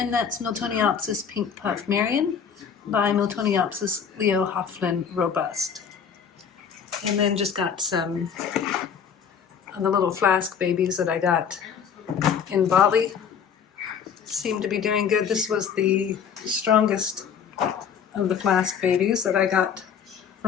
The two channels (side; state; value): right; quieter; 7.3 dB